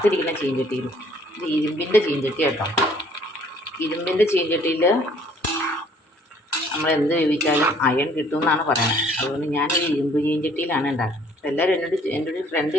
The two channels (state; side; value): normal; both; correlation 0.59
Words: ചീഞ്ചട്ടിയിൽ. ഇത് ഇരുമ്പിൻ്റെ ചീഞ്ചട്ടി കേട്ടോ. ഇരുമ്പിൻ്റെ ചീഞ്ചട്ടിയിൽ നമ്മൾ എന്ത് വേവിച്ചാലും അയൺ കിട്ടുമെന്നാണ് പറയുന്നത്. അതുകൊണ്ട് ഞാനൊരു ഇരുമ്പ് ചീഞ്ചട്ടിയിലാണ് ഉണ്ടാക്കുന്നത്. അപ്പോൾ എല്ലാവരും എൻ്റെ ഒരു ഫ്രണ്ട്